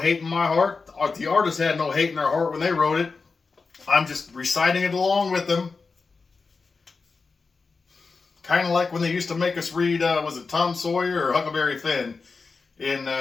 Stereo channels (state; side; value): quieter; right; 4.5 dB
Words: in my heart. The artist had no hate in their heart when they wrote it. I'm just reciting it along with them. Kind of like when they used to make us read, was it Tom Sawyer or Huckleberry Finn in